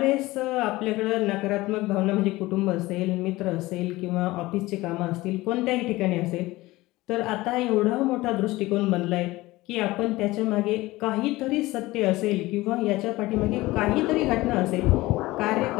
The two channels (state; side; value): quieter; right; 19.3 dB